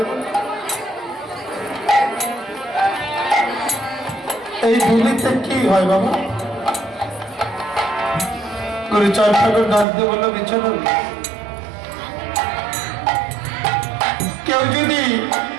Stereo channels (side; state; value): left; drops out; at 9.9 s